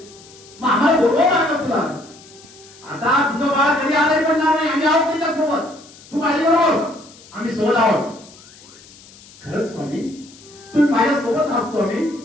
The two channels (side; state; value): left; noise; hiss, 22 dB below the sound